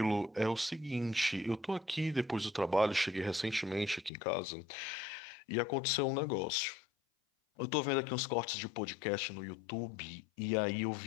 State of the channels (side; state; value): right; drops out; at 4.1 s